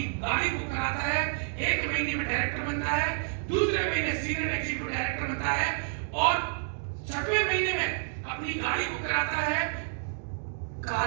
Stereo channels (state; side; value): silent; left; digital silence